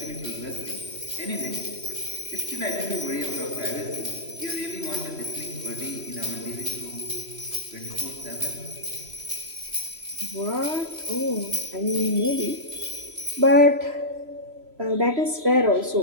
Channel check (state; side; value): late; left; 3.0 ms